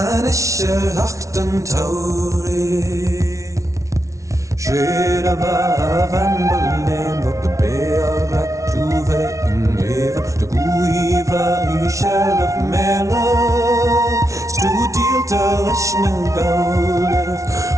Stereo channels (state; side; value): late; left; 0.15 ms